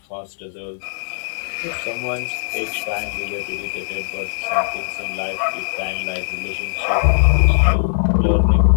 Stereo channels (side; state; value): right; silent; digital silence